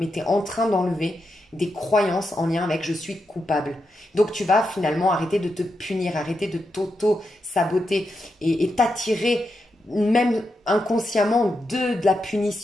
tu es en train d'enlever des croyances en lien avec je suis coupable. Donc tu vas finalement arrêter de te punir, arrêter de t'auto-saboter et t'attirer même inconsciemment de la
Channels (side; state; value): both; normal; correlation 0.86